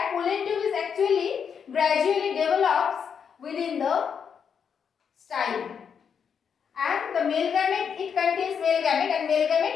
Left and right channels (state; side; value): quieter; right; 7.0 dB